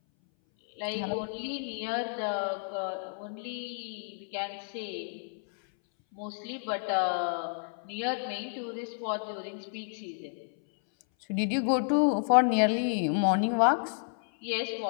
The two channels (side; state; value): right; silent; 57 dB below the other